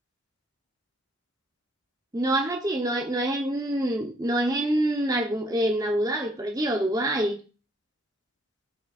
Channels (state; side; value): normal; both; correlation 0.67